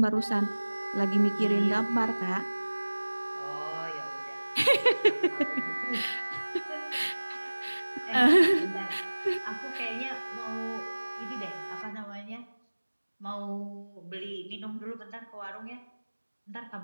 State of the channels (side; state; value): both; inverted; correlation -1.00